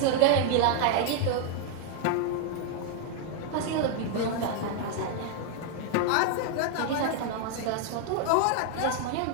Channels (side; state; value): both; different; correlation 0.00